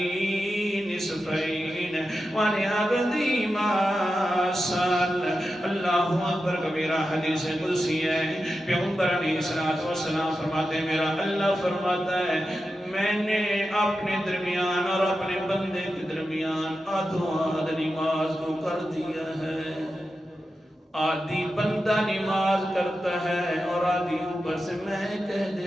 نصفین ولعبدی ما سأل. اللہ اکبر کبیرہ. حدیث قدسی ہے. پیغمبر علیہ السلام فرماتے ہیں میرا اللہ فرماتا ہے میں نے اپنے درمیان اور اپنے بندے کے درمیان آدھو آدھ نماز کو کر دیا ہے. آدھی بندہ نماز کرتا ہے اور آدھی اوپر سے میں کہہ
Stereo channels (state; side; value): normal; both; correlation 0.90